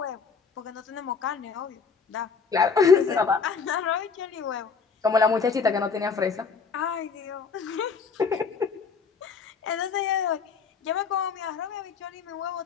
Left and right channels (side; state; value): right; quieter; 5.4 dB